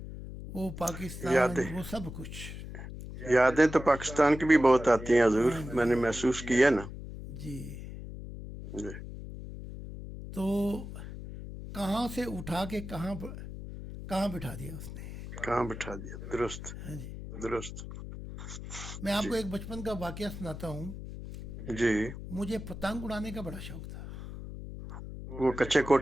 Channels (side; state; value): left; noise; hum, 10 dB below the sound